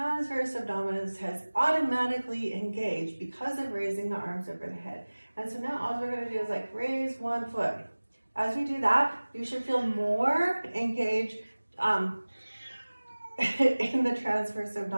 abdominis has automatically engaged because of raising the arms over the head. And so now all we're going to do is like raise 1 foot. As we do that, you should feel more engaged in the transverse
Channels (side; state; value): both; inverted; correlation -1.00